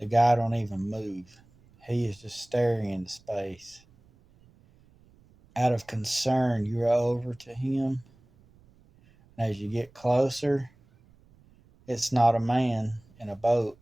The guy don't even move. He is just staring into space. Out of concern, you row over to him, and as you get closer, it's not a man in a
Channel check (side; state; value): right; noise; rumble, 29 dB below the sound